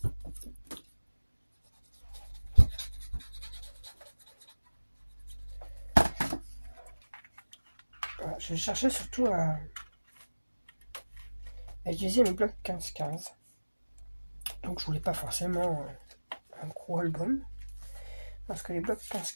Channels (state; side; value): inverted; both; correlation -1.00